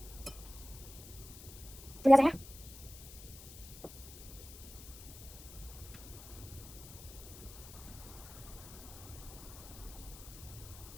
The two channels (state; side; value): noise; left; hiss, 15 dB below the sound